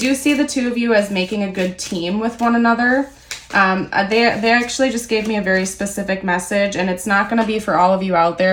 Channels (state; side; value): identical; both; correlation 1.00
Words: see the two of you as making a good team with one another. They actually just gave me a very specific message, and it's not going to be for all of you out